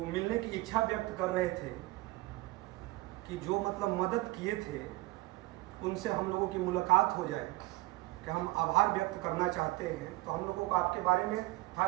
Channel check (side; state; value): left; quieter; 20.6 dB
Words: मिलने की इच्छा व्यक्त कर रहे थे कि जो मतलब मदद किए थे उनसे हम लोगों की मुलाकात हो जाए, कि हम आभार व्यक्त करना चाहते हैं। तो हम लोगों को आपके बारे में था